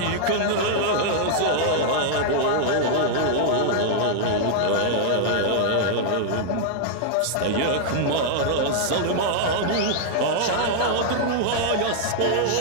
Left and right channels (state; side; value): different; both; correlation -0.01